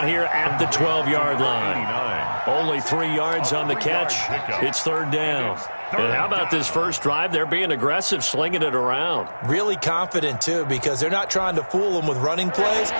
here at the 12-yard line. Only 3 yards on the catch. It's 3rd down. And how about this first drive? They're being aggressive, slinging it around. Really confident, too, because they're not trying to fool them with running plays,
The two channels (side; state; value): both; inverted; correlation -1.00